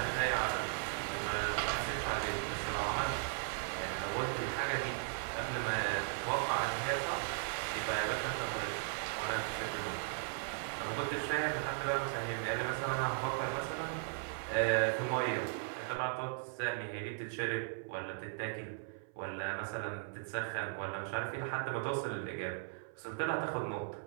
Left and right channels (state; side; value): silent; left; 53 dB below the other